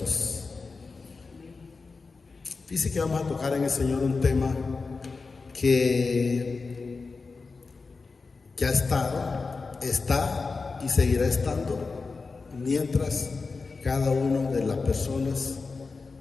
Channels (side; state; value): right; quieter; 4.3 dB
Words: Dice que vamos a tocar en el Señor un tema que ya ha estado, está y seguirá estando mientras cada una de las personas